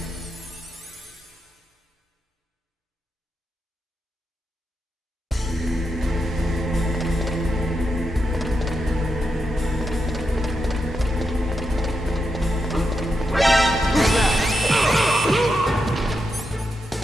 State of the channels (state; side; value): normal; both; correlation 0.85